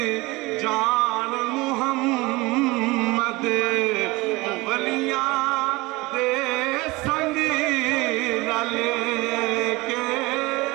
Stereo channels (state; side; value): quieter; left; 22.5 dB